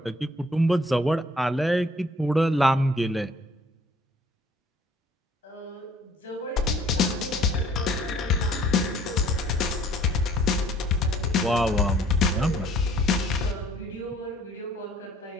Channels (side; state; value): both; normal; correlation 0.57